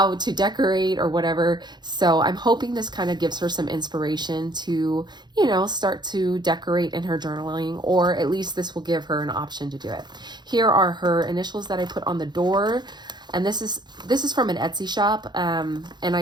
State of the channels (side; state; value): left; late; 0.21 ms